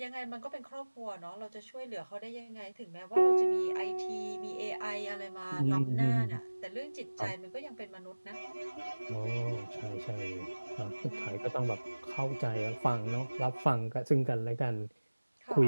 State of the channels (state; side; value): inverted; both; correlation -1.00